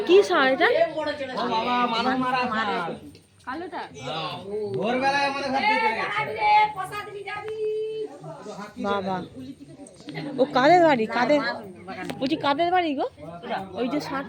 কি সার এটা? কালোটা ভোরবেলায় আমাদের ঘর থেকে চলে গেছে। বাবা, ও কাদের বাড়ি? কাদের বলছি, কাদের বাড়ি গো ওই যে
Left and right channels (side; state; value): both; identical; correlation 1.00